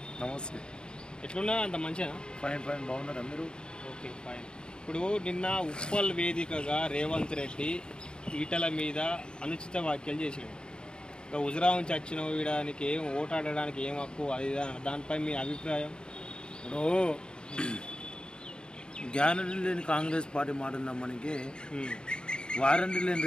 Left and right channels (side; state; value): right; late; 0.049 ms